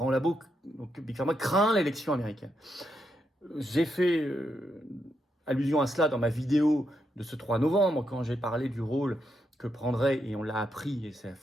labos, donc Big Pharma craint l'élection américaine. J'ai fait allusion à cela dans ma vidéo de ce 3 novembre, quand j'ai parlé du rôle que prendrait, et on l'a appris, et ça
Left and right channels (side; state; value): both; normal; correlation 0.81